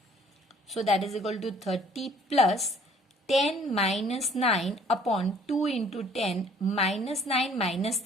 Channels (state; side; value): normal; both; correlation 0.57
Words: So that is equal to 30 plus 10 minus 9 upon 2 into 10 minus 9 minus